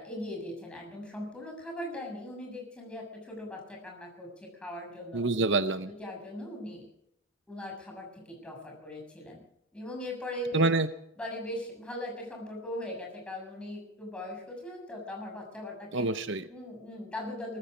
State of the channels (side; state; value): both; normal; correlation 0.17